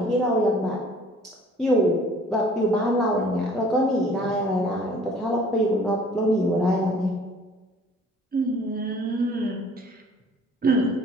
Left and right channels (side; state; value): both; normal; correlation 0.53